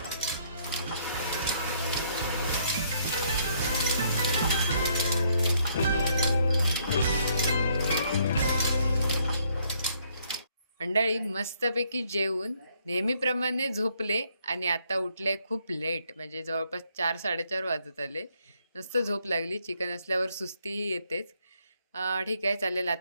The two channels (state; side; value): inverted; both; correlation -0.69